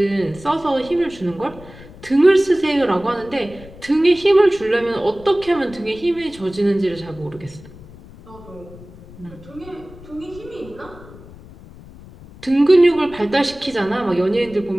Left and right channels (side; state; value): left; noise; rumble, 19 dB below the sound